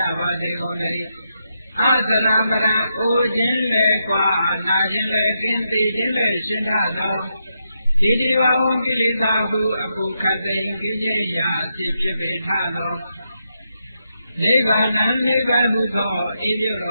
ပါစေကုန်လေအာသနာပရံအိုခြင်းလေကွာနာခြင်းလေကင်းသိခြင်းလေရှင်းထသောဒီဒီဝဝံကိလေသာဟုအပုခတ်သိင်ကိဉ္စရာစိဖြစ်ပေထသောနိဗ္ဗာန်နိဗ္ဗာန်ဟုသောဤပြုတ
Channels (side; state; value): both; inverted; correlation -0.83